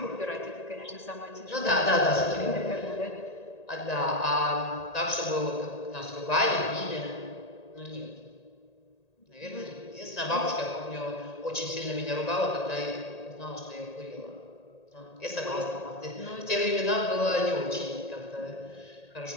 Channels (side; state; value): right; late; 1.8 ms